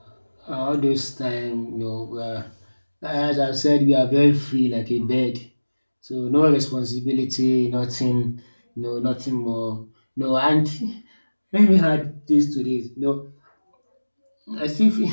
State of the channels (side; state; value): both; inverted; correlation -1.00